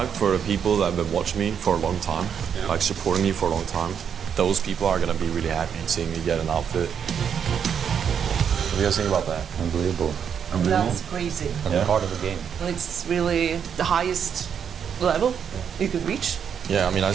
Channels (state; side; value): quieter; left; 7.7 dB